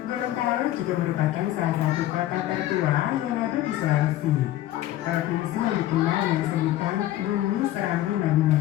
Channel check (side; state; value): right; quieter; 14.2 dB